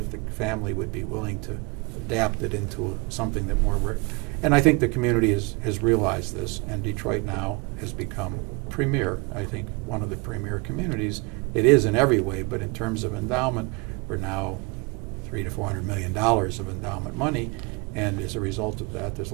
the family would be willing to adapt it into something that more, and I think the community has realized this, and Detroit now has become premier, I think one of the premier communities. It is in every way, but in terms of endowment, we're now $300 to $400 million of endowment money, and as a result of that, there's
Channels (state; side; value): quieter; left; 28.2 dB